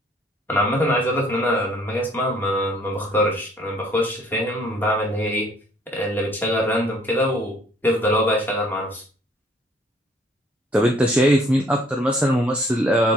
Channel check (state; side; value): normal; both; correlation 0.60